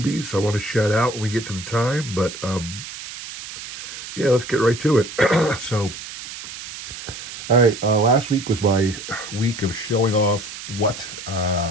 I want to shout out when we get to the time, but yeah, let's get right to it. So, all right, last week was my week of showing off what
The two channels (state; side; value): noise; right; hiss, 11 dB below the sound